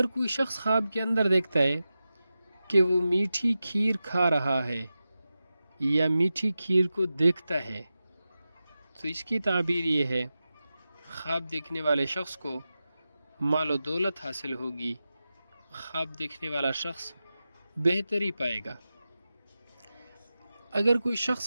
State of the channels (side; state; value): both; inverted; correlation -0.93